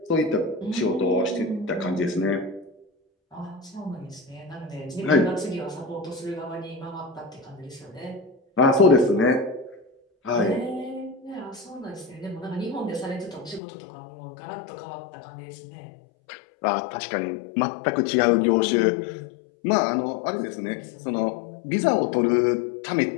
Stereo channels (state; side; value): drops out; right; at 13.6 s